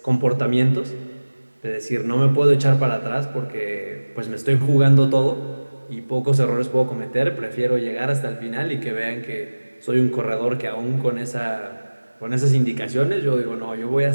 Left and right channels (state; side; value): inverted; both; correlation -1.00